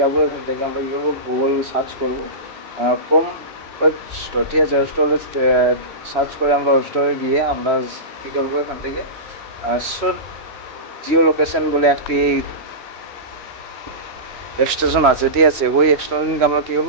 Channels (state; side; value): late; left; 3.0 ms